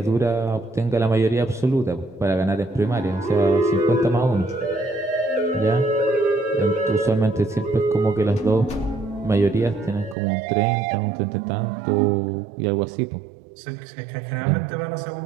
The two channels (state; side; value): drops out; left; at 10.2 s